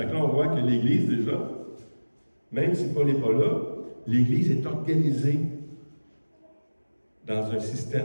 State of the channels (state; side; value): inverted; both; correlation -1.00